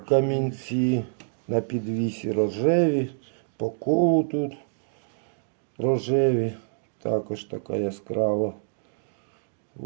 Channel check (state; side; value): silent; left; digital silence